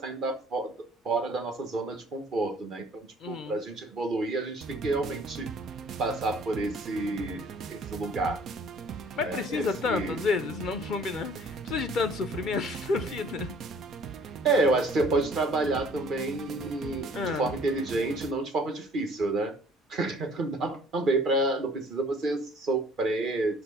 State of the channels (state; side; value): normal; both; correlation 0.55